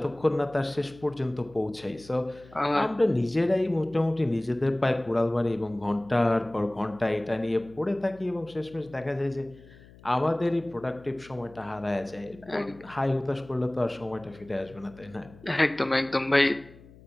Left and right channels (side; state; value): left; noise; hum, 22 dB below the sound